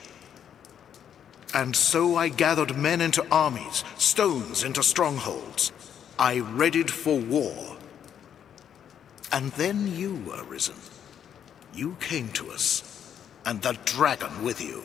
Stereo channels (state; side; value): quieter; right; 8.9 dB